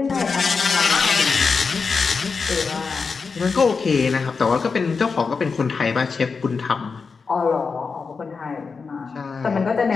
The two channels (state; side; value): quieter; right; 5.0 dB